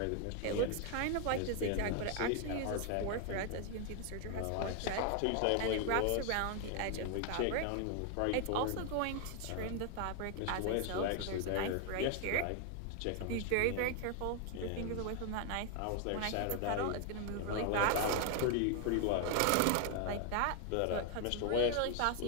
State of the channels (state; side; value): different; both; correlation 0.00